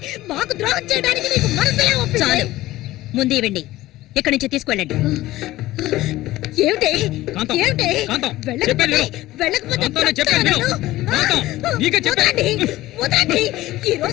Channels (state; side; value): quieter; right; 16.7 dB